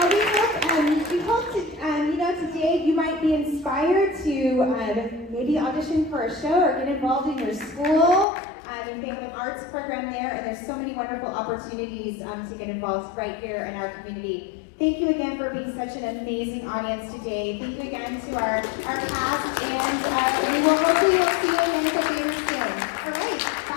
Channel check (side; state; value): right; drops out; at 8.2 s